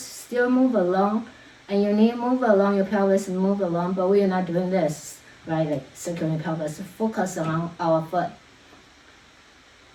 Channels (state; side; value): identical; both; correlation 1.00